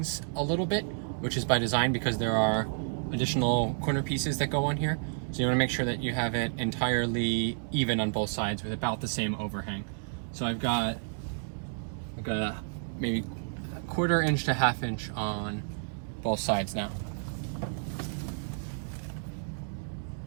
a little bit, which is by design, because there are additional corner pieces that go on here. So you want to make sure that you have it entirely even on both sides with about the same overhang. So I've got like a maybe a 1/4 inch to 1/2 inch on both sides now.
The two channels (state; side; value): silent; left; digital silence